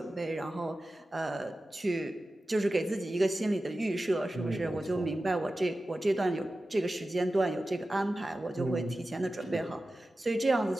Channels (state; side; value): normal; both; correlation 0.94